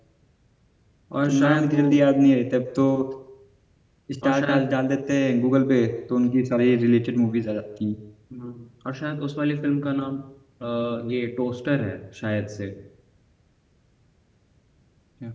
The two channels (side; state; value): both; identical; correlation 1.00